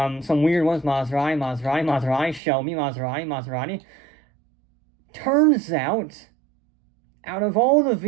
some weird ones, Maserati, Shelby, Maserati. Turns out of all the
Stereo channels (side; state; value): left; drops out; at 2.4 s